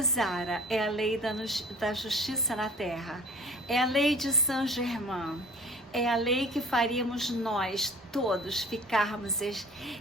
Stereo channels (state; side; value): normal; both; correlation 0.46